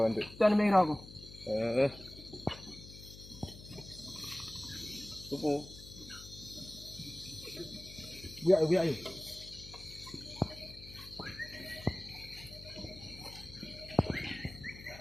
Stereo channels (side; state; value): left; noise; hum, 16 dB below the sound